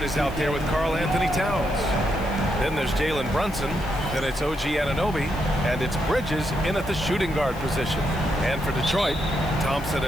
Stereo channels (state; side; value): noise; left; hiss, 21 dB below the sound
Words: is out there with Karl Anthony Towns. Then there's Jalen Brunson, then it's OG Anunoby, and it's Bridges in at the shooting guard position. And for Detroit, Thompson